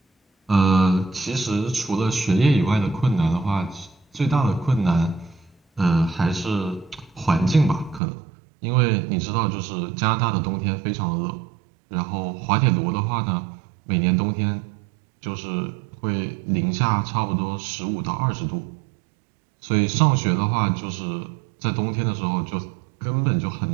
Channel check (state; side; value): drops out; left; at 8.0 s